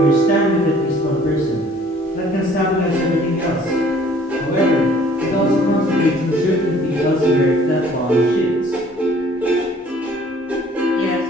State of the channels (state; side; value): normal; both; correlation 0.56